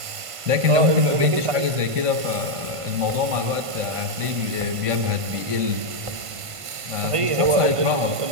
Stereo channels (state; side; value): late; left; 1.5 ms